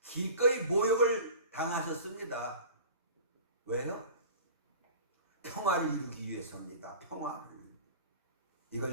기꺼이 모욕을 당하셨습니다. 왜요? 평화를 이루기 위해서입니다. 평화를.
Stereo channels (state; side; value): inverted; both; correlation -0.40